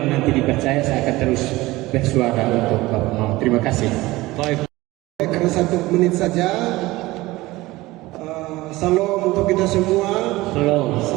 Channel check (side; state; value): left; quieter; 19.4 dB